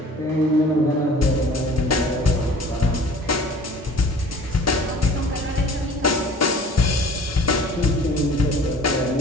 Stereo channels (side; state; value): both; normal; correlation 0.47